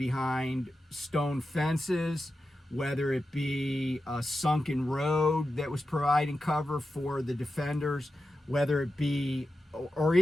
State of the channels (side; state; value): both; normal; correlation 0.91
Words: stone fences, whether it be a sunken road that was providing cover for the defenders, whether it be, or